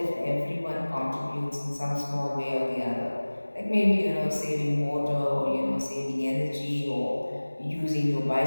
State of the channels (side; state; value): both; inverted; correlation -1.00